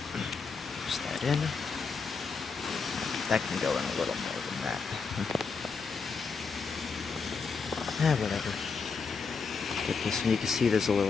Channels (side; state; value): right; quieter; 5.1 dB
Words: that in. That can go in a little more than that. Whatever. Get this, and you can see there's a